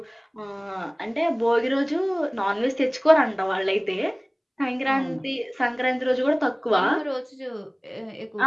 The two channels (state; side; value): identical; both; correlation 1.00